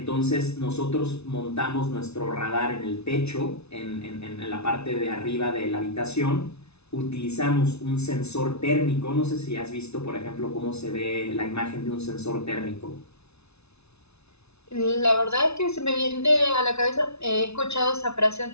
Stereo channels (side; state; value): right; late; 0.80 ms